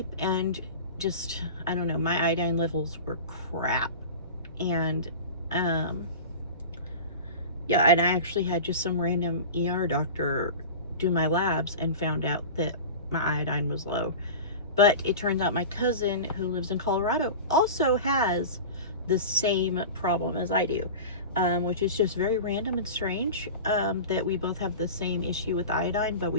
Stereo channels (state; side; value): inverted; both; correlation -0.32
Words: and just, I don't know, my iodine levels were crap. And yeah, and I actually had just some random ER doctor do my labs and found out that my iodine was low. But it turns out my cousin who lives in Colorado also has the same problem as I do, which is just very random and strange, that we both have the same issue with iodine, but